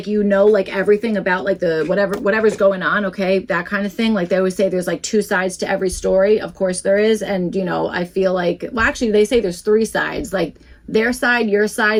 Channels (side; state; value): both; identical; correlation 1.00